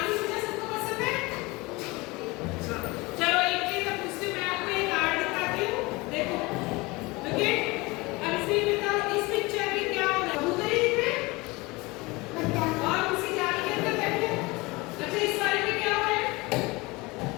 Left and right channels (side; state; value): right; quieter; 23.6 dB